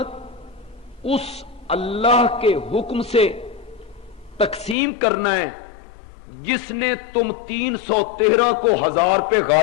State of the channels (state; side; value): drops out; right; at 4.8 s